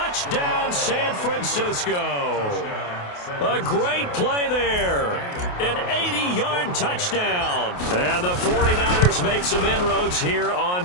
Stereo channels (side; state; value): right; late; 28 ms